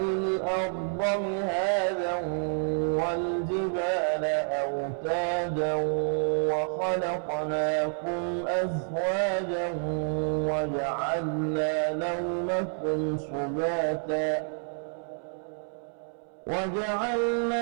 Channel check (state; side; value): silent; left; 59 dB below the other